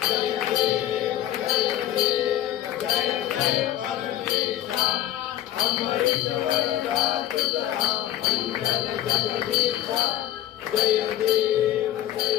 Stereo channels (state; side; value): quieter; right; 12.4 dB